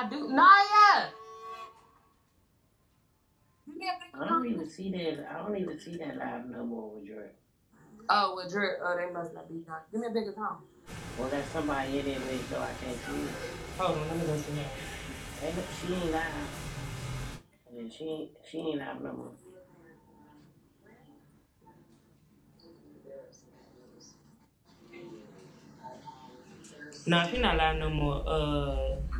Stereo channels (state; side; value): identical; both; correlation 1.00